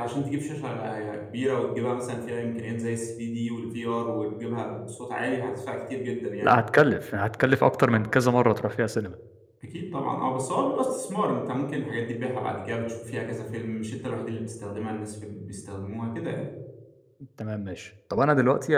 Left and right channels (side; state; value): both; identical; correlation 1.00